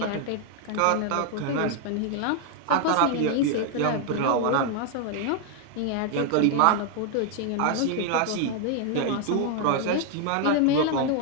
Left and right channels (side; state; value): both; different; correlation 0.00